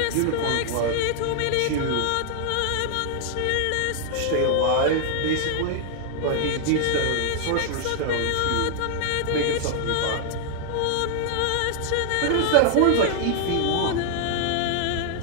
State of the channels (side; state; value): both; different; correlation 0.00